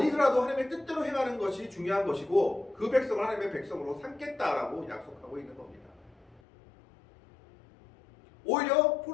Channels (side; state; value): right; drops out; at 6.4 s